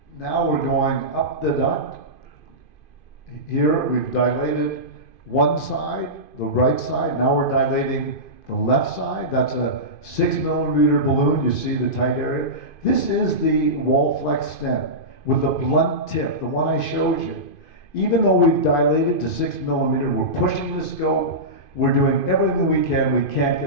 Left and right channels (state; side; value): late; right; 2.5 ms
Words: now we're going up the duct. Here we've dilated one side, the right side. Now we're dilating the left side. That's a 6 millimeter balloon. You see the tight area. This is the wall flex stent with a blunt tip, the one I showed you. Even though we've dilated to 6 millimeter, we're pushing the scope. We're doing everything we can. We can't